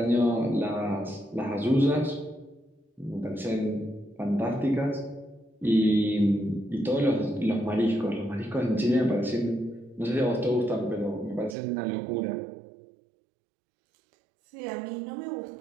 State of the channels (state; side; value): drops out; left; at 11.6 s